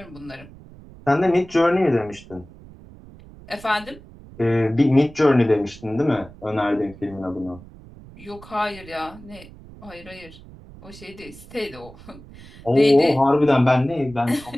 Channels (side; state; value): right; noise; rumble, 20 dB below the sound